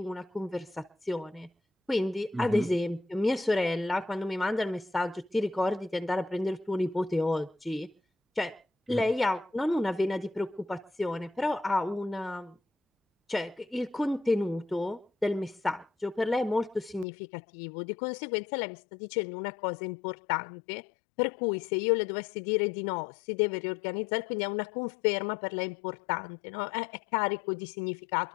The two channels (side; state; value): right; drops out; at 17.1 s